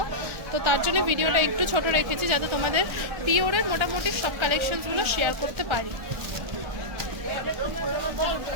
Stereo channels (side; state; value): left; late; 1.4 ms